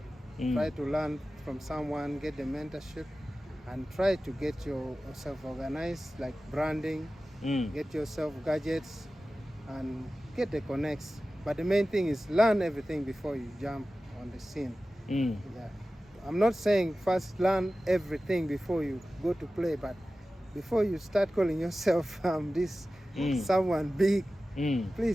Try to learn from someone, get the mentorship, and try to get yourself organized, like branding, get yourself gadgets, and get the connects. But the main thing is learn everything before you jump on the scene. Yeah. I'm not saying first learn everything before you go to play, but before you start calling yourself this someone big,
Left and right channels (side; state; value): both; normal; correlation 0.95